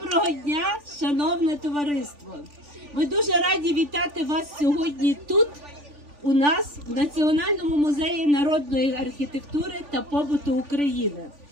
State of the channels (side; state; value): left; late; 3.4 ms